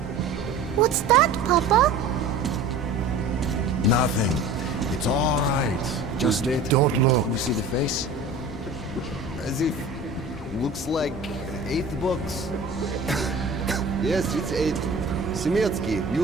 What's that, Papa? Nothing. It's all right. Just don't look. You see the face? As if... looks like 8 books. Yes, it's 8. Semetsky,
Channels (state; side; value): quieter; left; 3.3 dB